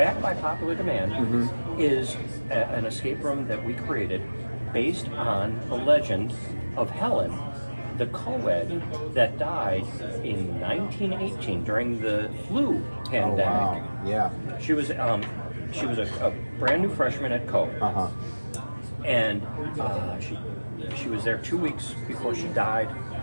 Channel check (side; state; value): both; inverted; correlation -1.00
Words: by popular demand is an escape room that we created based on the legend of Helen, the co-ed that died in 1918 during the flu Oh pandemic. wow. Yeah. She was a brand new freshman at Co. Uh-huh. And she was there 2 weeks before she died